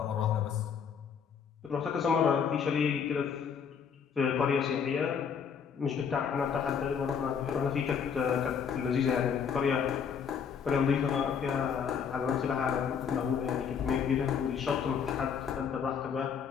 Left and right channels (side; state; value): right; quieter; 7.0 dB